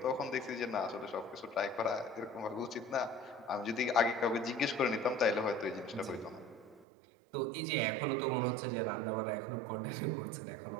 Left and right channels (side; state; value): left; drops out; at 6.9 s